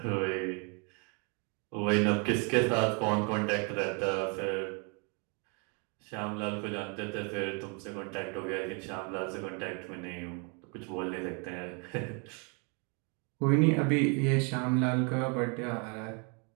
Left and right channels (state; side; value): quieter; left; 35.1 dB